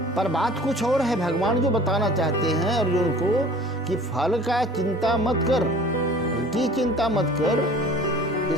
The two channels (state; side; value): normal; both; correlation 0.46